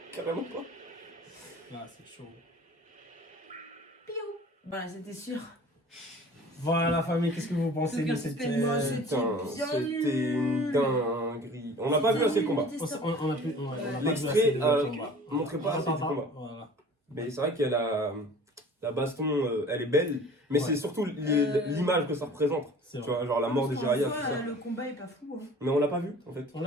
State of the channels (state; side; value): normal; both; correlation 0.45